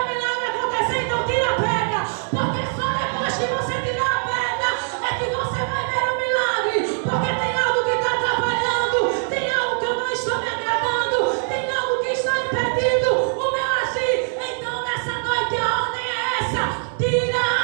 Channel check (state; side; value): silent; left; digital silence